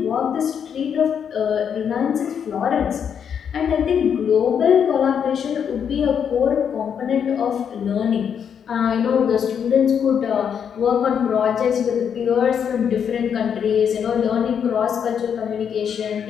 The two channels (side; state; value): right; quieter; 7.8 dB